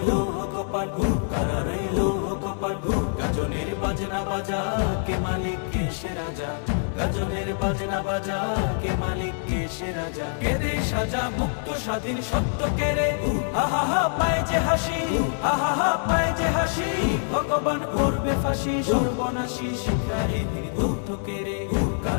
কপাট, কারা রইল কপাট, গাজনের বাজনা বাজা কে মালিক কে সে রাজা, গাজনের বাজনা বাজা কে মালিক কে সে রাজা, কেদে সাজা মুক্ত স্বাধীন সত্য কেড়ে, আহা হা পায় যে হাসি, আহা হা পায় যে হাসি, ভগবান করবে ফাঁসি, সর্বনাশী শিখায় দুঃখ কেড়ে,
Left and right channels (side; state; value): right; silent; digital silence